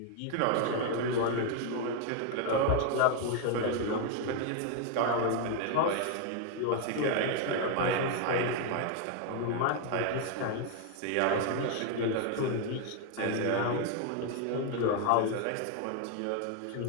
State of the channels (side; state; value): both; different; correlation 0.01